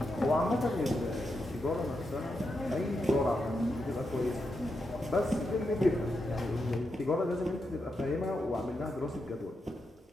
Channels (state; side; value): normal; both; correlation 0.85